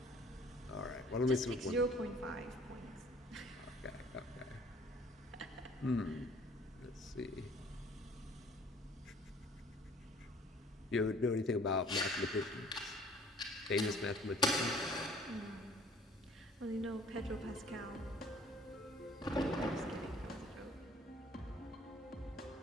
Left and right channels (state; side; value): normal; both; correlation 0.55